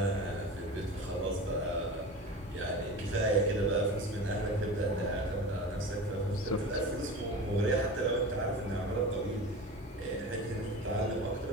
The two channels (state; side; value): normal; both; correlation 0.32